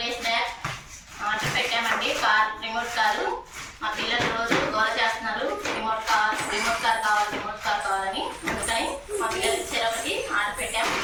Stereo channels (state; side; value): identical; both; correlation 1.00